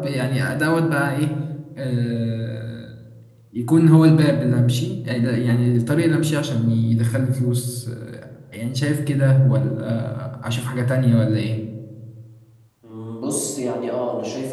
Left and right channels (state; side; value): identical; both; correlation 1.00